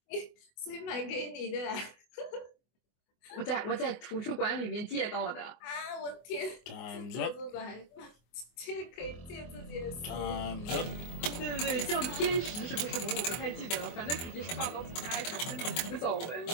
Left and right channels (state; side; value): late; right; 24 ms